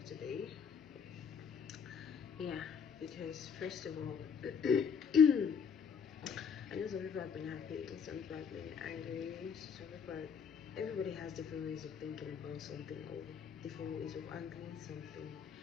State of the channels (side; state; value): right; quieter; 6.7 dB